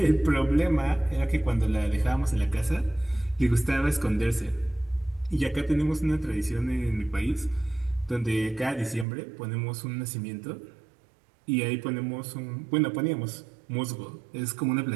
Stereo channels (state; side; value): drops out; left; at 9.1 s